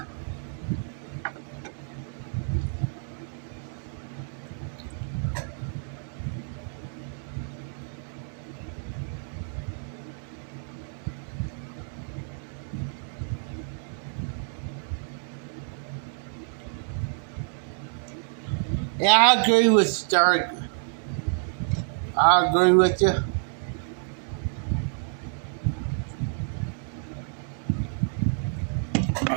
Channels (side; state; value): left; silent; 59 dB below the other